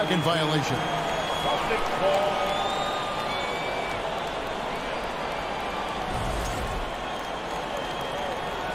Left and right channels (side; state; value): both; identical; correlation 1.00